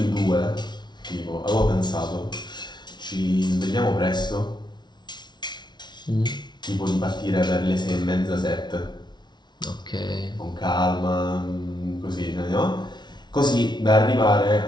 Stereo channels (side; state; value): right; late; 0.21 ms